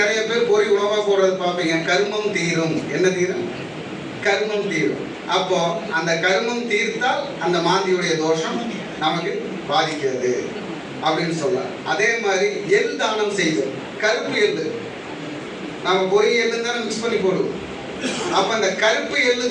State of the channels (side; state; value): both; identical; correlation 1.00